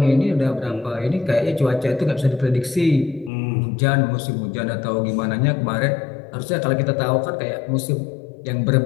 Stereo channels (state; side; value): drops out; right; at 3.3 s